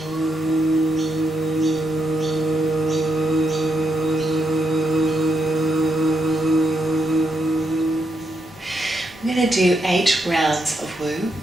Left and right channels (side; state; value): both; normal; correlation 0.81